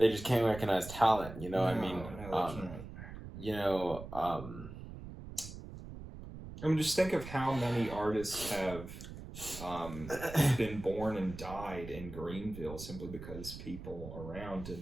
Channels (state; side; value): noise; right; rumble, 12 dB below the sound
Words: just can't recognize talent, I mean... I mean, just think of how many artists have been born and died in Greenville simply because people around did